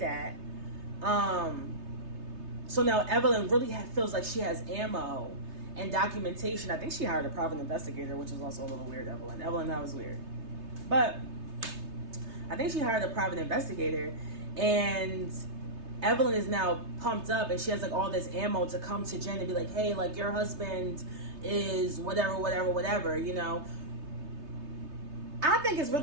So now Evelyn really feels like she has ammo and documentation. I think she hired a private investigator, which is also a little weird, Evelyn. Evelyn, that was weird. But I think she hired a private investigator, and Evelyn is now pumped up, and she has like all this ammo to come to Jen and be like, hey, like your husband is whatever, you know. I think it's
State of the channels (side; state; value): left; late; 3.3 ms